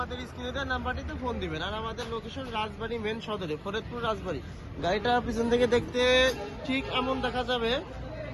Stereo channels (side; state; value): both; identical; correlation 1.00